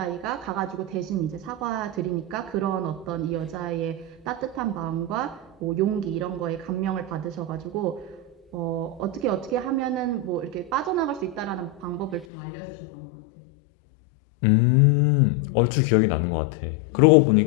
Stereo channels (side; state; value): right; drops out; at 12.2 s